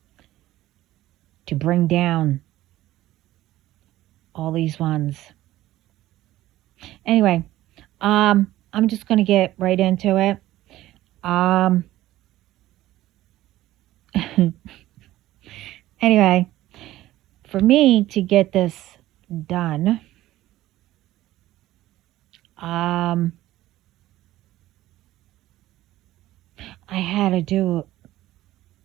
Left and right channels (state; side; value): quieter; left; 15.4 dB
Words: to bring down all these ones. Anyway, I'm just gonna get right into it. Um, anyway, for me to get this done, um, I had to do